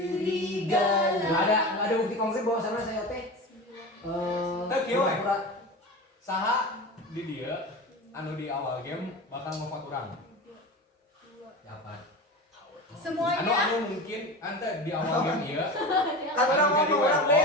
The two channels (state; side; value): normal; both; correlation 0.29